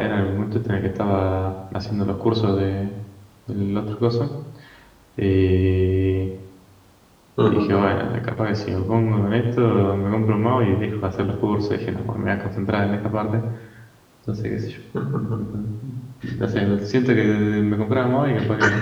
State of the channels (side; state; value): both; identical; correlation 1.00